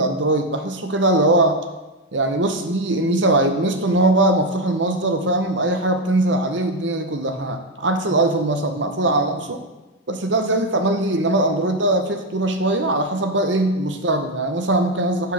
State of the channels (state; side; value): normal; both; correlation 0.08